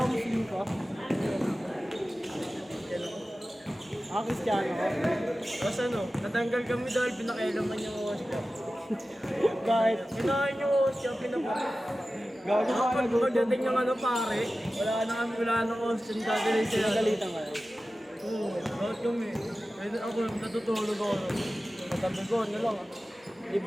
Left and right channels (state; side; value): normal; both; correlation 0.95